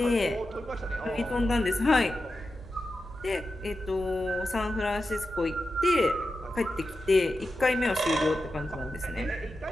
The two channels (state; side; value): noise; left; hum, 23 dB below the sound